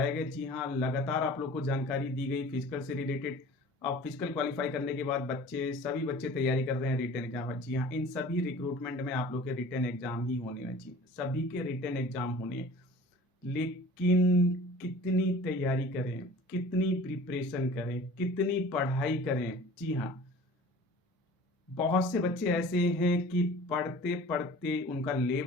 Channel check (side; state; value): both; normal; correlation 0.44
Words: गए। जी हाँ, लगातार आप लोग को जानकारी दी गई फिजिकल से रिलेटेड। अब फिजिकल क्वालिफाई करने के बाद सभी बच्चे तैयारी कर रहे हैं रिटन एग्जाम। जी हाँ, इन सभी रिक्रूटमेंट में आप लोग के रिटन एग्जाम ही होने हैं। जी, सभी के रिटन एग्जाम होने हैं, लेकिन कितनी तैयारी करें, कितनी प्रिपरेशन करें, कितनी पढ़ाई करें। जी हाँ, बहुत से बच्चे ऐसे हैं कि पढ़ते पढ़ते उनका